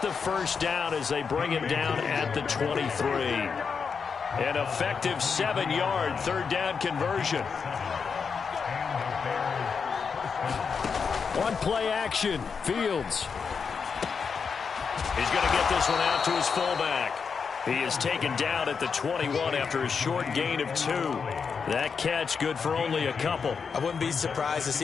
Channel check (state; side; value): quieter; right; 5.8 dB